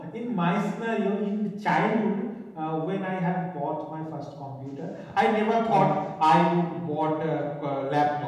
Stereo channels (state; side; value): identical; both; correlation 1.00